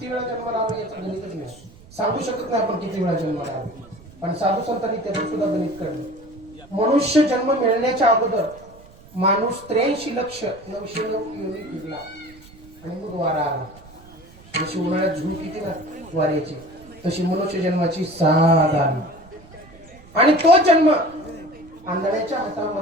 वेळा जन्माला आलो याचं गणितच नाही, सांगू शकत नाही आपण किती वेळा जन्माला आलो. पण साधू संतांनी त्याचं सुद्धा गणित काढलं. मनुष्य जन्म मिळण्याच्या अगोदर माणूस 83,909 योनी फिरला आणि मग वारा आला. जशी उन्हाळ्यात झूल किती ना वाऱ्याची, तशी मनुष्य जन्माची 6 आली. आणि तो जन्म आंधळ्याच्या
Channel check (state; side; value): noise; right; rumble, 23 dB below the sound